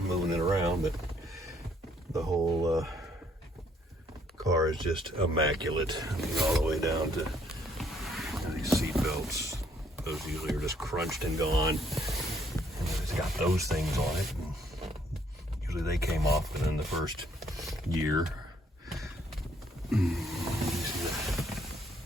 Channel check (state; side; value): normal; both; correlation 0.67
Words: moving it around, but the whole car is just immaculate. I mean, all the way down to these seat belts. Those usually are just crunched and gone. And it's got those things on it. And usually they came off within the first year. You see